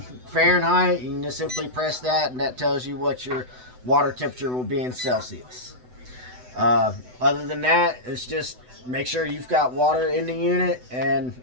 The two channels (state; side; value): late; left; 8.0 ms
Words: Fahrenheit, you can just simply press that, and that tells you what your water temperature will be in Celsius. Other than that, it's just make sure you've got water in the unit, and